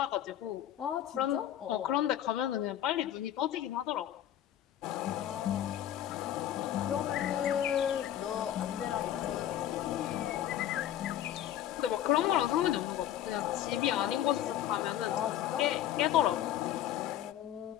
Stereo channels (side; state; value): right; quieter; 11.6 dB